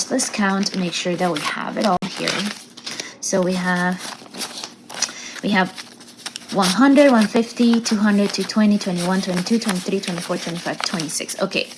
let's count, make sure that we have it all here. So we have 100, 150, 200, 220, 21, 22, 23, 24, 25, 26. Okay,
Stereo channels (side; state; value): both; identical; correlation 1.00